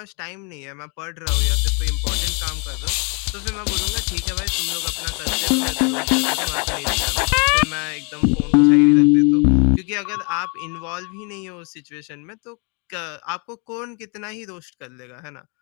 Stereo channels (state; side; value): quieter; right; 34.8 dB